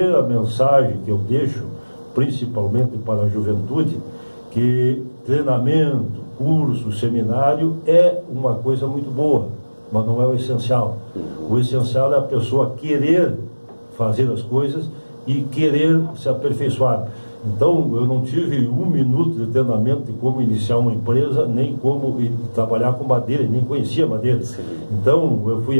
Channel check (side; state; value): both; inverted; correlation -1.00